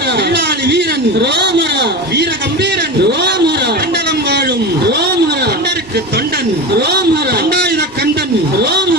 வெள்ளாளி வீரன் ராமர வீர கம்பீரன் ராமர கண்டலம் வாழும் ராமர கண்டருக்கு தொண்டன் ராமர கண்டாயுத கண்டன்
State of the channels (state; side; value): normal; both; correlation 0.25